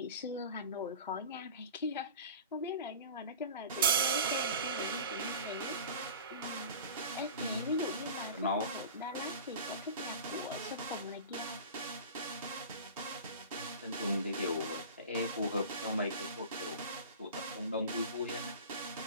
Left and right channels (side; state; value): both; inverted; correlation -0.35